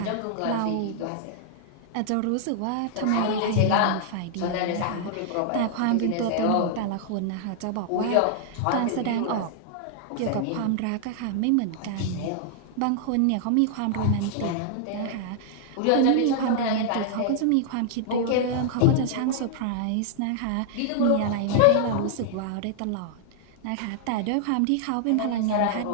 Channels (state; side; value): different; both; correlation -0.01